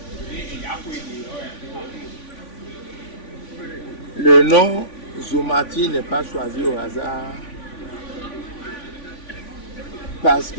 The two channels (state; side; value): late; right; 3.5 ms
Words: le nom Somati n'est pas choisi au hasard parce